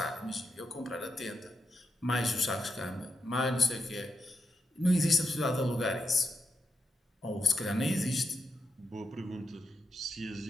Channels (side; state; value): both; normal; correlation 0.84